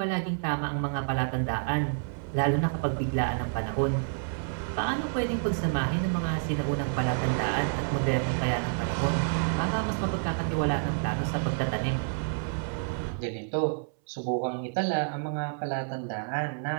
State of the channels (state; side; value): silent; left; 59 dB below the other